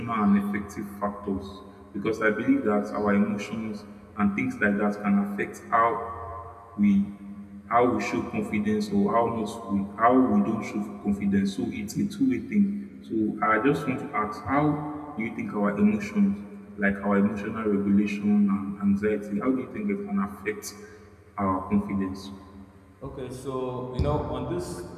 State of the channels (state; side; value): identical; both; correlation 1.00